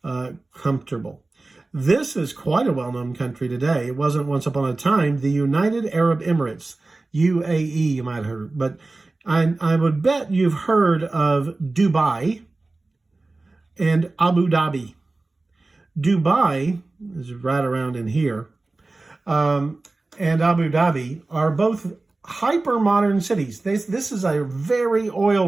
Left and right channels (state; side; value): quieter; left; 3.2 dB